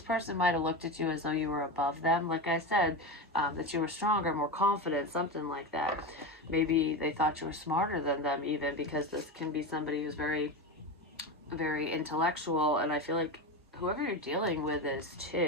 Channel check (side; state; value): both; normal; correlation 0.20